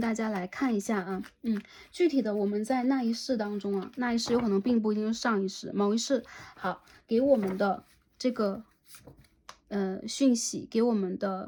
家来看一下啊。具体的我们在那一世当中啊，那一世有可能并不一定是上一世，某一世好给我们的这个讯息，给我们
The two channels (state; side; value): identical; both; correlation 1.00